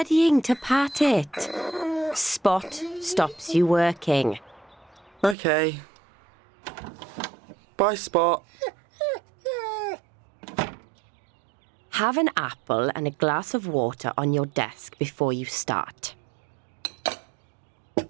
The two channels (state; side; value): drops out; left; at 5.4 s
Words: to pat it. Spot stops you working. Okay. Bye, Spot. Have an apple and a glass of water on your desk before you start.